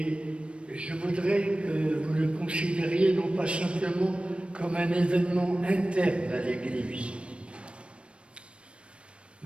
je voudrais que vous le considériez non pas simplement comme un événement interne à l'Église,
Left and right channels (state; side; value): late; left; 0.059 ms